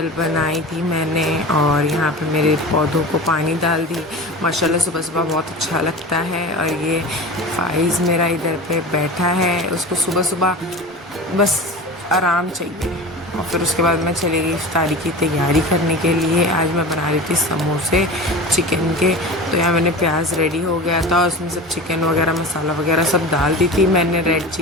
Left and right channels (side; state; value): both; normal; correlation 0.31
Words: बनाई थी मैंने और यहाँ पे मेरे पौधों को पानी डाल दी। माशाल्लाह सुबह सुबह बहुत अच्छा लगता है। और ये फाइज़ मेरा इधर पे बैठा है, उसको सुबह सुबह बस आराम चाहिए। और फिर उसके बाद मैं चली गई इफ्तारी की तैयारी करने के लिए। आज मैं बना रही थी समोसे चिकन के। तो यहाँ मैंने प्याज रेडी हो गया था और उसमें सब चिकन वगैरह मसाला वगैरह सब डाल दी थी मैंने, रेड